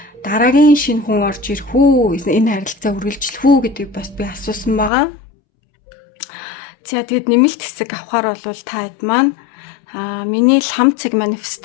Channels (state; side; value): drops out; right; at 4.9 s